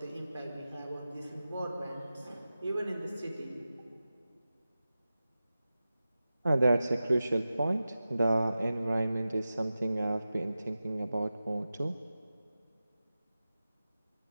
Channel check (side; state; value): both; inverted; correlation -0.94